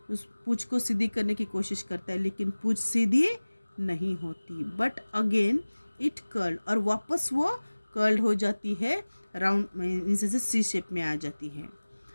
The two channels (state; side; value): inverted; both; correlation -1.00